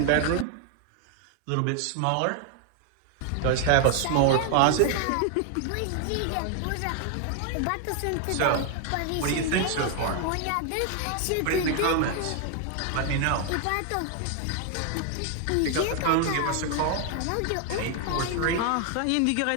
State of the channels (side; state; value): both; different; correlation 0.00